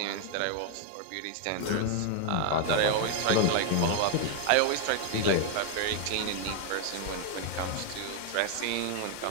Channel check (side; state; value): both; different; correlation 0.00